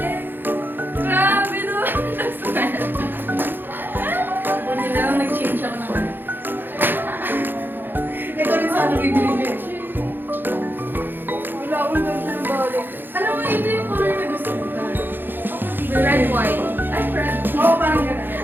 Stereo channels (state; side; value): late; left; 0.096 ms